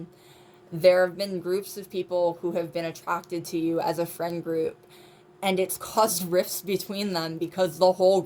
There have been groups of people who have been attracted to you as a friend group, and it's caused rifts between them because the whole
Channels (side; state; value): both; identical; correlation 1.00